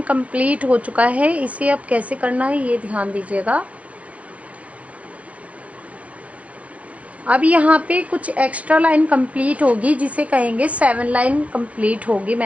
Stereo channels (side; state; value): left; late; 0.065 ms